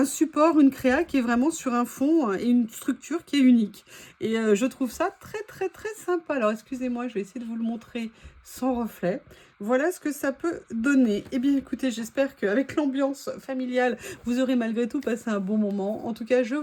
support, une créa qui est vraiment sur un fond et une structure qui est unique. Et je trouve ça très très très sympa. Alors excusez-moi, je vais essayer de vous le montrer sans reflet. Voilà ce que ça peut donner. Eh bien écoutez, j'espère qu'avec l'ambiance familiale, vous aurez malgré tout passé un bon moment. En tout cas, je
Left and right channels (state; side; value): identical; both; correlation 1.00